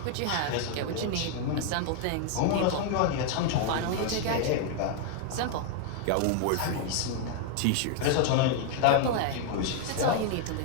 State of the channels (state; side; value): different; both; correlation 0.00